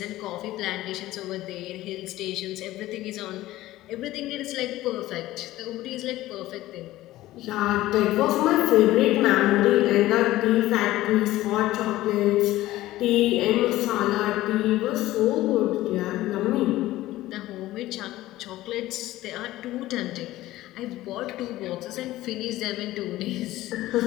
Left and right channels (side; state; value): right; quieter; 16.2 dB